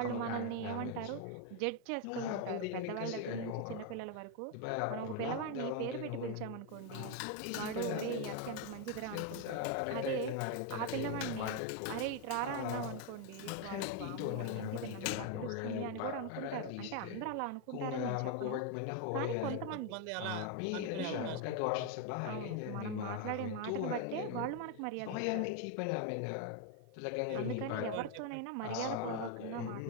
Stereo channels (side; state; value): both; different; correlation 0.01